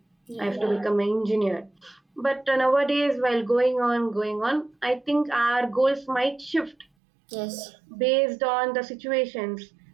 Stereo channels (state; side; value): drops out; left; at 6.9 s